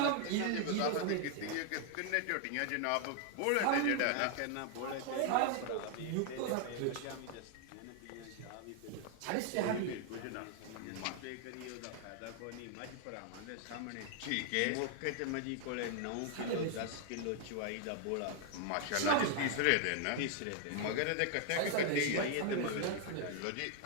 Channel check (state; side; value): different; both; correlation 0.00